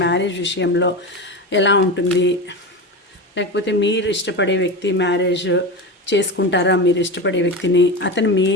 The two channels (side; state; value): both; normal; correlation 0.23